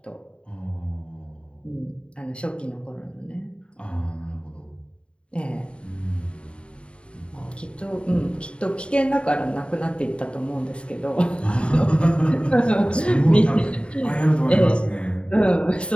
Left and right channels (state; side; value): late; right; 0.056 ms